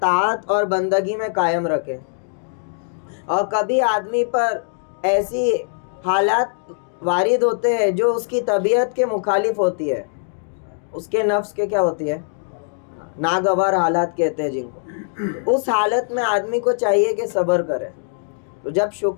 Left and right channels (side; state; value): right; silent; digital silence